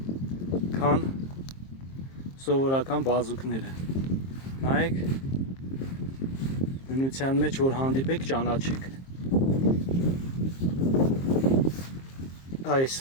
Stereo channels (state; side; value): late; right; 23 ms